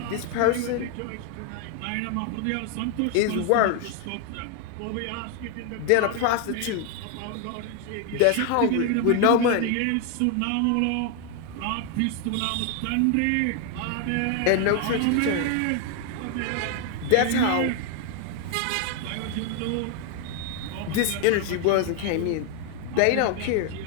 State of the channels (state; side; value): different; both; correlation 0.00